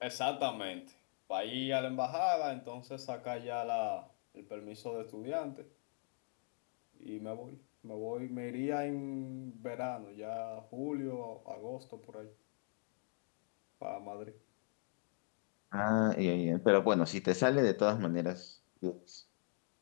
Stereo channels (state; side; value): silent; right; 51 dB below the other